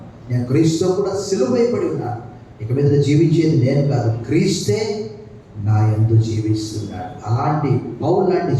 నేను క్రీస్తుతో కూడా సిలువైపడి ఉన్నాను. ఇక మీద జీవించేది నేను కాదు, క్రీస్తే నా యందు జీవిస్తున్నాడు. అలాంటి పౌలు లాంటి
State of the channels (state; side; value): identical; both; correlation 1.00